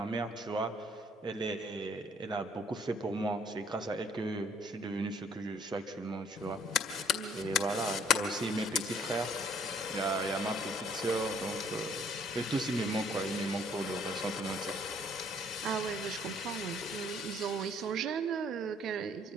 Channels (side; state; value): both; normal; correlation 0.61